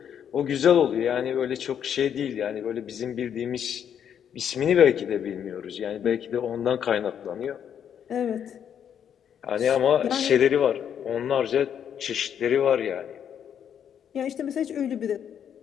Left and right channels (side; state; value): right; quieter; 8.7 dB